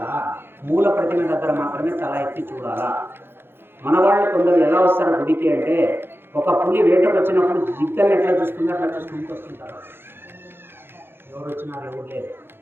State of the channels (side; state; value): left; late; 0.11 ms